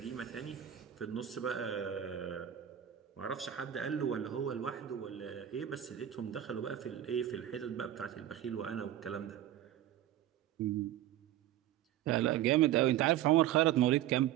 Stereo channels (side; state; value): left; quieter; 11.9 dB